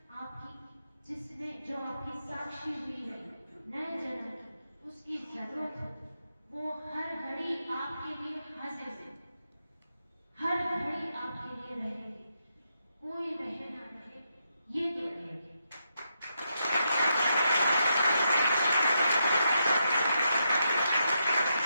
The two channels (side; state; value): both; inverted; correlation -0.82